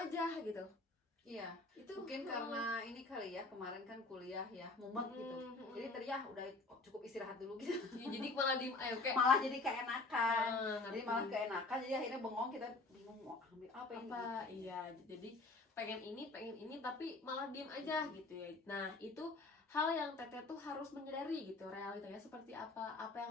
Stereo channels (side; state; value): right; quieter; 3.4 dB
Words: gitu. Iya, Itu mungkin karena ini kali ya, kemarin kan kuliah ya, mumet gitu. Jadi tadi ya udah cukup istirahat dulu gitu. ya, jadi malah diem ayo kayak Malah jadi keenakan. Jadi ngerti. malah keenakan, jadi akhirnya bengong, kita bingung mau ambil apa ini. Apa iya, jadi pengen ini tapi malah diem aja gitu ya. Nah, itu hal yang Teteh tuh harus menyadari gitu, realitanya seperti apa